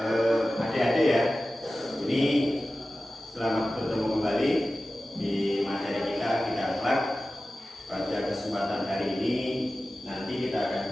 adik-adik ya. Ini selamat bertemu kembali di materi kita akhlak. Pada kesempatan hari ini nanti kita akan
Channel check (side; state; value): both; normal; correlation 0.95